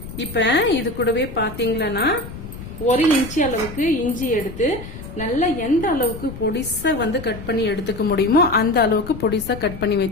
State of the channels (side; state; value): left; noise; rumble, 12 dB below the sound